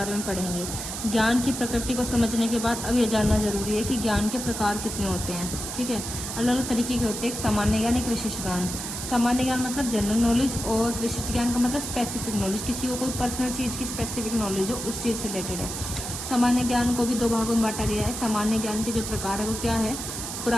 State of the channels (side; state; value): right; noise; hiss, 6 dB below the sound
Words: में पढ़ेंगे। ज्ञान की प्रकृति को समझने के बाद अब यह जानना जरूरी है कि ज्ञान के प्रकार कितने होते हैं। ठीक है, अलग अलग तरीके के होते हैं, एक सामान्य ज्ञान, एक विशिष्ट ज्ञान। सामान्य ज्ञान मतलब जनरल नॉलेज, और विशिष्ट ज्ञान का मतलब स्पेसिफिक नॉलेज, किसी को कोई पर्सनल चीज़ की स्पेसिफिक नॉलेज हो, उस चीज़ से रिलेटेड है। सामान्य ज्ञान को भी दो भागों में बांटा गया है। सामान्य ज्ञान के जो प्रकार है वो क्या है,